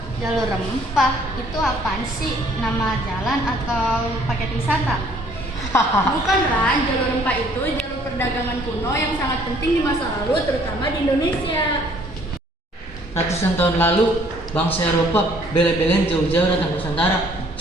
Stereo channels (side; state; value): both; normal; correlation 0.60